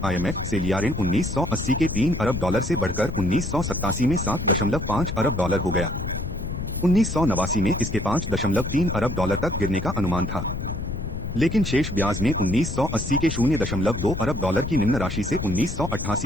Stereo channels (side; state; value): left; noise; rumble, 6 dB below the sound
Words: IMF से लिया ऋण 1980 के 3 अरब डॉलर से बढ़कर 1987 में 7.5 अरब डॉलर हो गया। 1989 में इसके 5.3 अरब डॉलर तक गिरने का अनुमान था, लेकिन शेष ब्याज में 1980 के 0.2 अरब डॉलर की निम्न राशि से